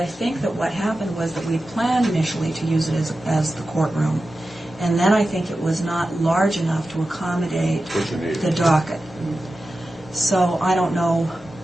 think that what happened was that we planned initially to use it as the courtroom, and then I think it was not large enough to accommodate What you need. the docket. So I don't know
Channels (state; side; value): normal; both; correlation 0.93